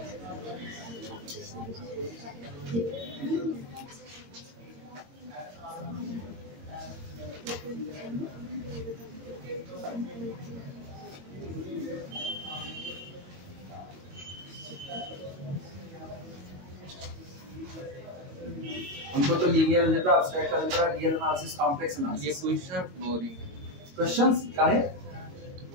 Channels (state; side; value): late; left; 22 ms